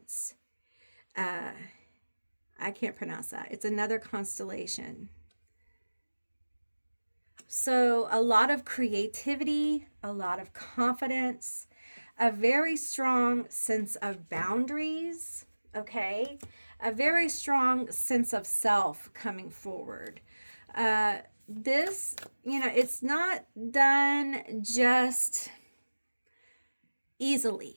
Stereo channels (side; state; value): both; inverted; correlation -1.00